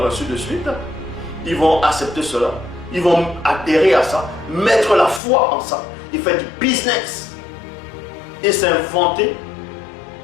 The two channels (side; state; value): right; drops out; at 5.2 s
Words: ainsi de suite. Ils vont accepter cela, ils vont adhérer à ça, mettre la foi en ça, ils font du business et s'inventer